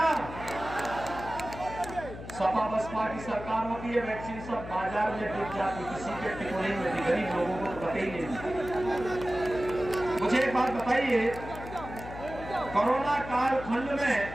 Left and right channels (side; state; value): left; noise; hum, 11 dB below the sound